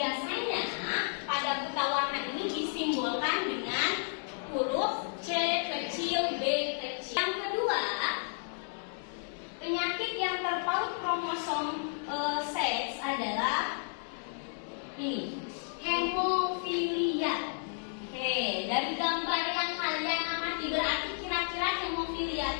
pada buta warna ini disimbolkan dengan huruf C kecil, B kecil. Yang kedua, penyakit yang terpaut kromosom seks adalah ini, hemofilia. Oke, dari gambar yang kalian amati, berarti kira-kira hemofilia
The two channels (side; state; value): right; silent; digital silence